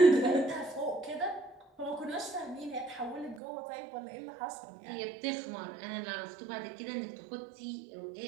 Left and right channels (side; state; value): left; drops out; at 3.4 s